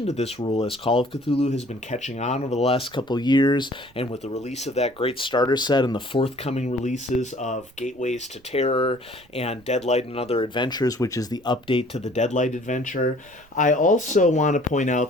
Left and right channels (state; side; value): noise; right; rumble, 28 dB below the sound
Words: to this rule, as Call of Cthulhu has been catching on over the last couple of years, and with the release of that great starter set and the forthcoming releases of Gateways to Terror and Deadlight and Other Adventures, which is the update to the Deadlight adventure. I also want to point